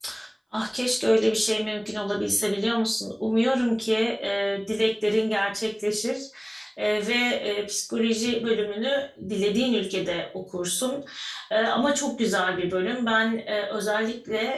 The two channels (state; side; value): identical; both; correlation 1.00